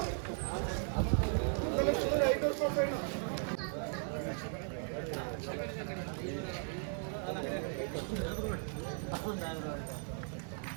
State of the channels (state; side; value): silent; left; 53 dB below the other